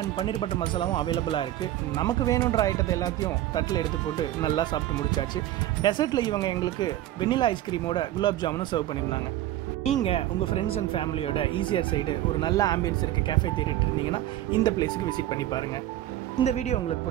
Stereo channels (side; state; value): left; quieter; 13.8 dB